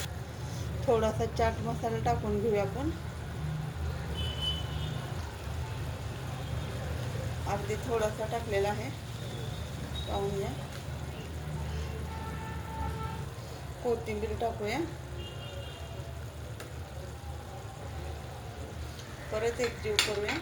थोडासा चाट मसाला टाकून घेऊया आपण. अगदी थोडासा टाकलेला आहे, पाहून घ्या. कोथिंबीर टाकूया. परत एकजीव करूया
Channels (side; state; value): both; identical; correlation 1.00